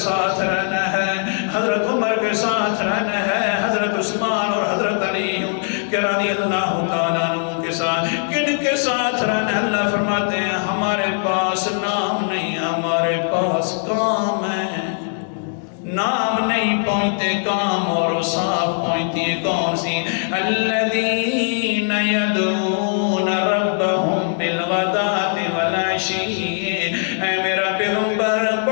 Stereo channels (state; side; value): silent; right; 65 dB below the other